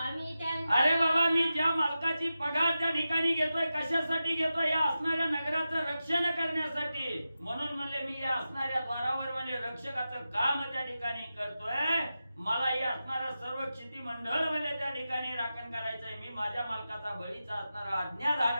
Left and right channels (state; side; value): inverted; both; correlation -0.92